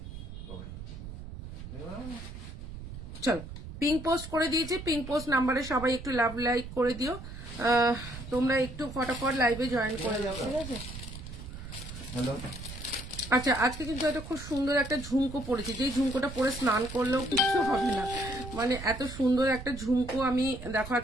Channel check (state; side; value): noise; right; rumble, 11 dB below the sound